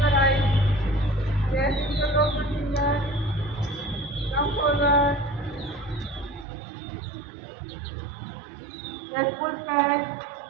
your eyes, yes, use your open finger, come forward, yes, full stretch,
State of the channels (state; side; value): drops out; left; at 6.5 s